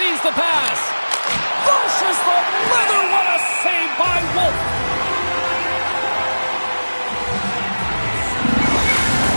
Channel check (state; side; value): inverted; both; correlation -1.00